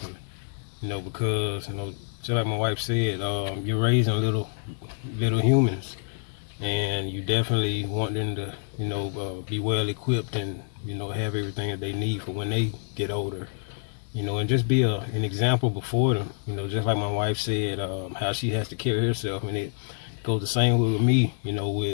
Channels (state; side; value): silent; right; 60 dB below the other